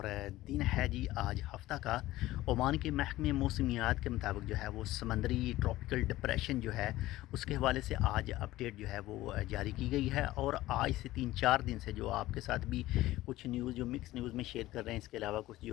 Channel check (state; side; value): quieter; right; 16.6 dB